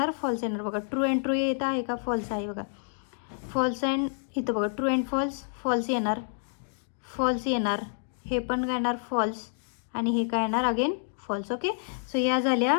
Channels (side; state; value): right; silent; digital silence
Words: फॉल्स येणार बघा. ट्रू अँड ट्रू येत आहे का, फॉल्स आहे बघा. फॉल्स अँड इथं बघा ट्रू अँड फॉल्स, फॉल्स येणार. फॉल्स येणार. हे पण काय येणार फॉल्स आणि हे काय येणार अगेन फॉल्स. ओके. सो या झाल्या